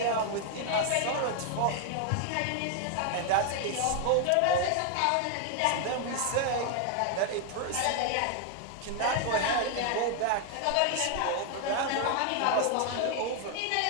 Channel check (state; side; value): different; both; correlation 0.00